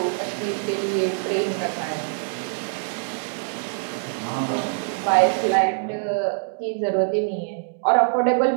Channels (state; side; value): silent; left; digital silence